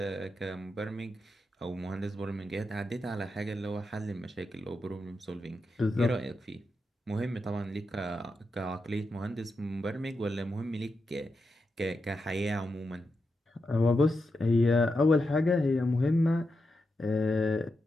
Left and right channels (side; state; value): both; normal; correlation 0.87